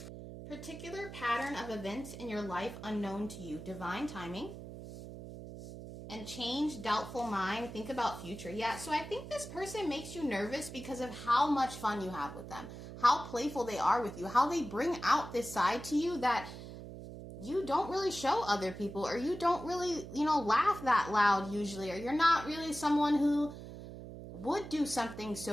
particular pattern of events in your life unknown to you, divine timing, and change, doubtful mind, think about future. Yeah, so I think this person makes you nervous because of how much fun you have with them, how playful they are with you, how they bring out this side to you that you don't really show other people, or you don't really, laugh that loud usually, or you're not really someone who would do something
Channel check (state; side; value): noise; right; hum, 12 dB below the sound